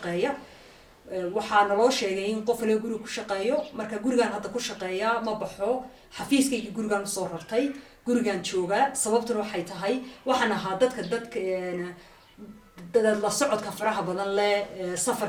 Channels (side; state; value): both; identical; correlation 1.00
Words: waxaa naloo sheegay in qof laga guriga ku shaqeeyo marka gurigaan hadda ku shaqeeya ma baxo xafiiskayga gurigaan usoo rartay gurigaan joogaa sababtuna waxay tahay waxaan ahaa dadka la socodka faraha badan leh